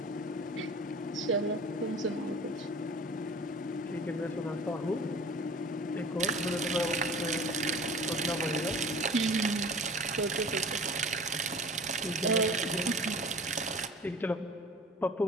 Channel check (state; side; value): normal; both; correlation 0.42